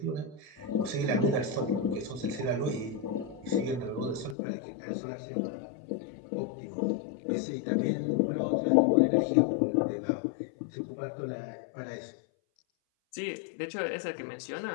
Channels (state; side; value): drops out; right; at 4.4 s